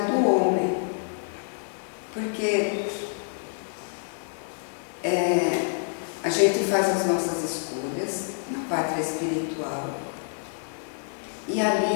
do homem. Porque a gente faz as nossas escolhas na pátria espiritual e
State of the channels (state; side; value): silent; right; digital silence